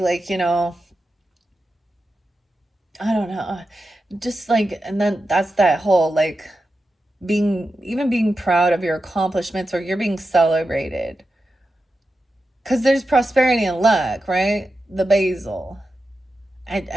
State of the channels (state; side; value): normal; both; correlation 0.91